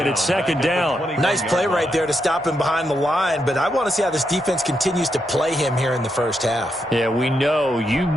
it's second down. Nice play right there to stop him behind the line, but I want to see how this defense continues to play him here in the first half. Yeah, we know. You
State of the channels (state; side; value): normal; both; correlation 0.82